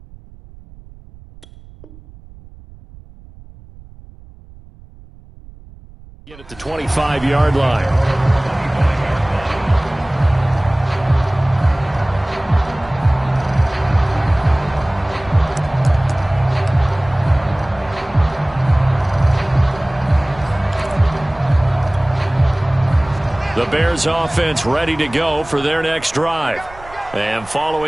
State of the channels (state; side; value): noise; right; rumble, 21 dB below the sound